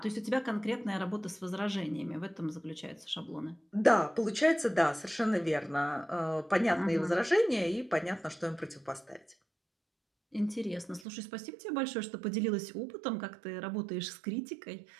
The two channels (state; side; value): drops out; left; at 11.1 s